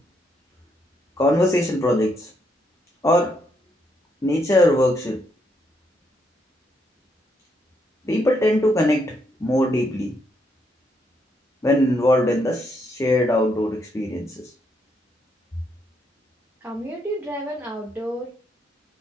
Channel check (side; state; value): both; normal; correlation 0.76